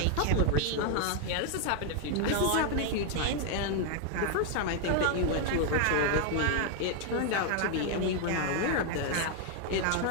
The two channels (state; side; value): different; both; correlation 0.00